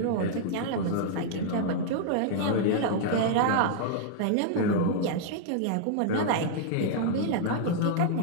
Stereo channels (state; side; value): different; both; correlation -0.01